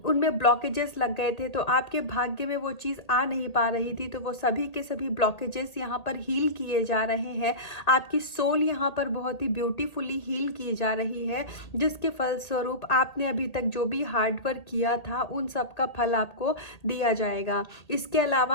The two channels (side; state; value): right; late; 1.8 ms